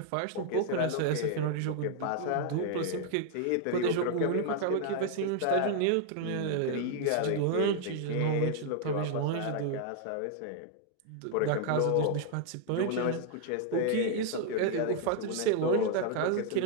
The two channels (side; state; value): both; different; correlation 0.00